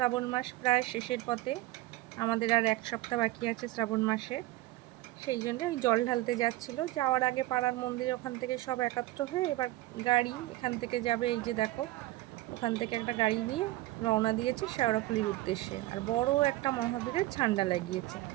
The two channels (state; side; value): quieter; left; 18.0 dB